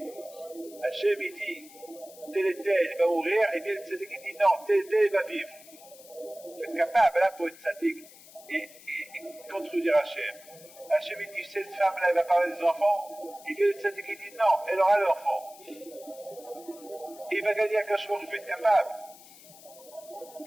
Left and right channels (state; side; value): noise; left; hiss, 21 dB below the sound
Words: Hachem, il dit, tel et tel, il va mourir, et bien cette équipe dit, non, tel et tel, il va vivre. Vous êtes capable, là, pour être sadique. Et contredire Hachem. Hachem il dit, cette femme-là, elle va parler des enfants. Il vient de cette qui dit, non, elle aura l'enfant. Il va gagner un cachemire, je vais être capable.